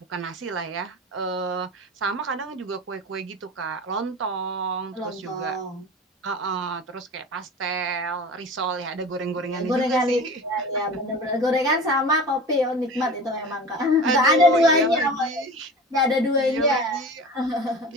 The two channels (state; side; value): normal; both; correlation 0.35